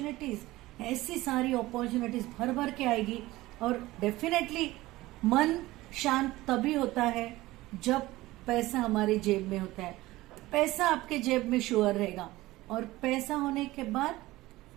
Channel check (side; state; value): left; quieter; 18.3 dB